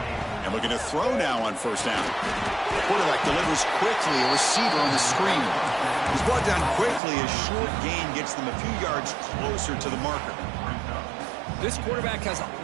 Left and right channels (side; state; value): left; drops out; at 7.0 s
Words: And looking to throw now on first down. The quarterback delivers quickly, a receiver on the screen. He's brought down quickly. A short gain gets them a few yards closer to the marker. This quarterback has